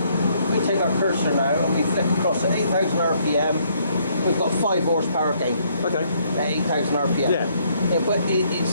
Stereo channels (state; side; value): inverted; both; correlation -0.68